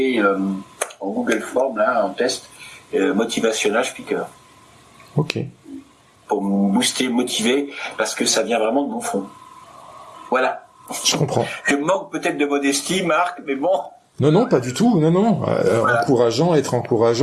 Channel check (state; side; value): identical; both; correlation 1.00